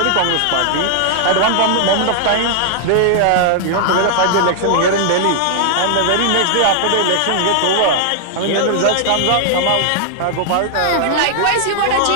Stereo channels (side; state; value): both; different; correlation -0.01